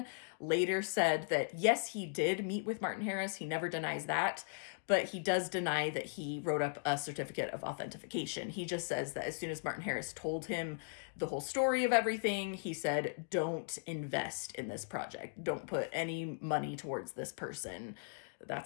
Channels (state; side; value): silent; right; digital silence